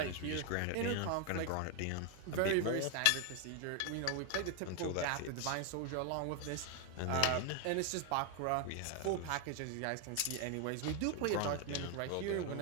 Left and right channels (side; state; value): both; different; correlation 0.01